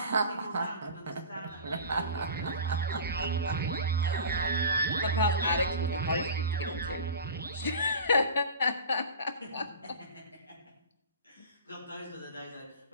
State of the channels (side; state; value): both; inverted; correlation -0.36